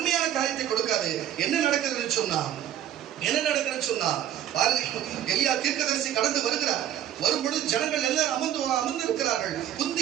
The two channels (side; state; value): left; quieter; 11.2 dB